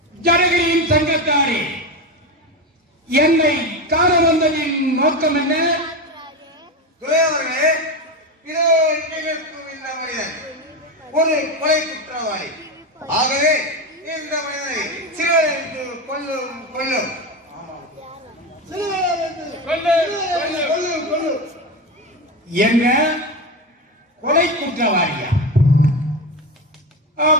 ஜனகையின் சங்கத்தாரே, என்னை காண வந்ததின் நோக்கம் என்ன? துரையவர்களே, இதோ நிகழ்க்கும் இந்த மனிதன் ஒரு கொலை குற்றவாளி. ஆகவே இந்த மனிதனை சிறுவருக்கு கொல்லும் கொல்லும் என்ன கொலை குற்றவாளியா?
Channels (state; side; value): normal; both; correlation 0.18